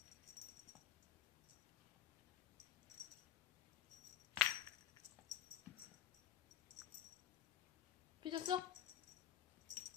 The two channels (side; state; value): right; quieter; 10.7 dB